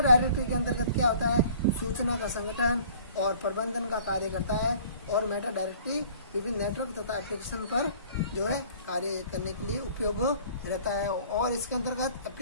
डायरेक्टरी के अंतर्गत क्या होता है, सूचना का संगठन और प्रबंधन का कार्य करता है और मेटा डायरेक्टरी विभिन्न नेटवर्क तथा एप्लीकेशन पर जो है कार्य करने के लिए उपयोग रहता है। और इसके अंतर्गत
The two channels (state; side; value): inverted; both; correlation -0.51